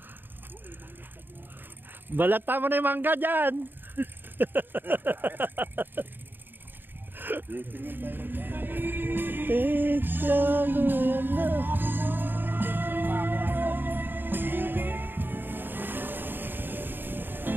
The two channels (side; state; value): left; late; 0.094 ms